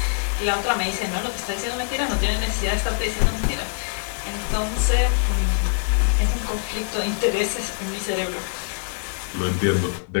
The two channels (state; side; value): silent; right; digital silence